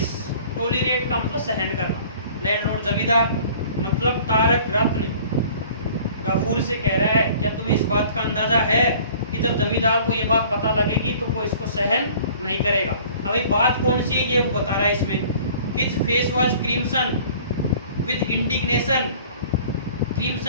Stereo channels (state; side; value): inverted; both; correlation -0.50